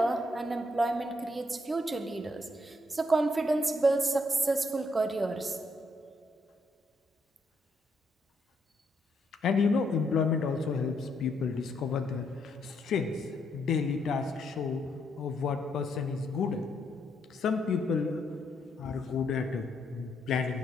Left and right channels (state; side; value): normal; both; correlation 0.75